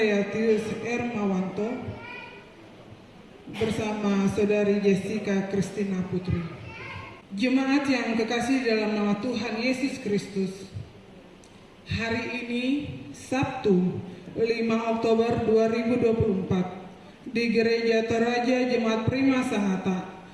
Ermawanto bersama Saudari Jessica Christina Putri. Jemaat yang kekasih dalam nama Tuhan Yesus Kristus, hari ini Sabtu 5 Oktober 2024 di Gereja Toraja Jemaat Prima Sangatta,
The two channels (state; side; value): identical; both; correlation 1.00